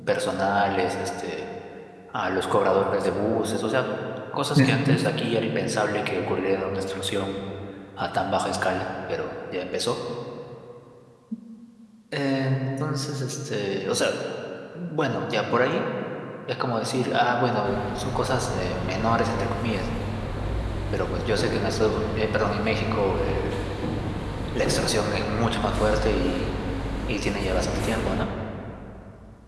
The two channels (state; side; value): identical; both; correlation 1.00